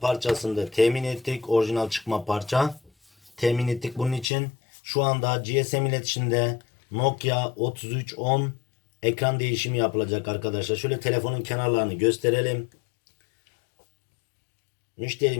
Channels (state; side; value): drops out; right; at 4.2 s